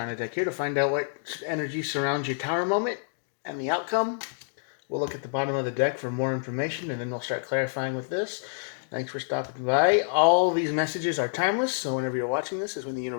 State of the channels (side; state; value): right; silent; digital silence